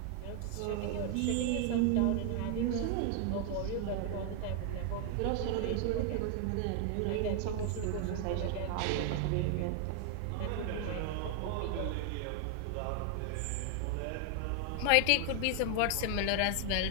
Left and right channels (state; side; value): different; both; correlation 0.00